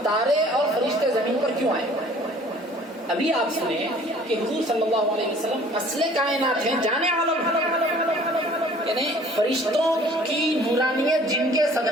تارے اور فرشتے زمین پر کیوں آئے؟ ابھی آپ سنیں کہ حضور صلی اللہ علیہ وسلم اصل کائنات ہیں، جان عالم، یعنی فرشتوں کی نورانیت جن کے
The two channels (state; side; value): normal; both; correlation 0.52